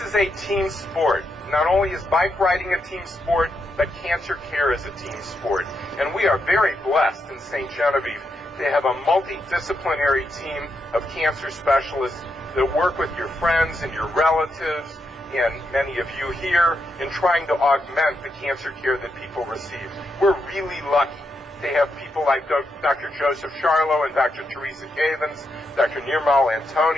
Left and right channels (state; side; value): normal; both; correlation 0.82